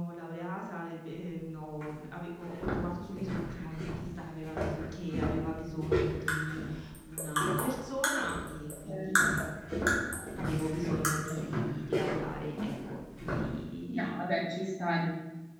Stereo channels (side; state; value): both; identical; correlation 1.00